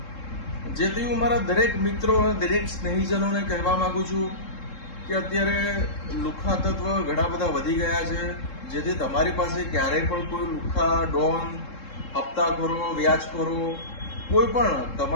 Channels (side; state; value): right; late; 3.7 ms